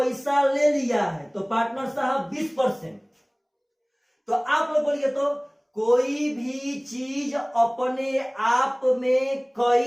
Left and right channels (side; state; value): both; identical; correlation 1.00